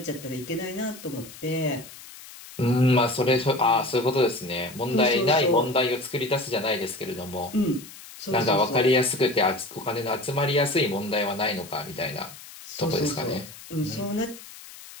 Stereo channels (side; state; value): left; noise; hiss, 17 dB below the sound